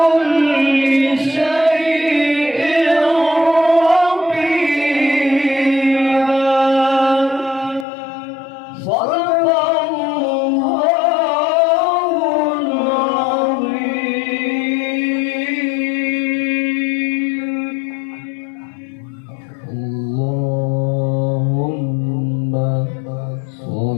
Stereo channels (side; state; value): right; drops out; at 7.9 s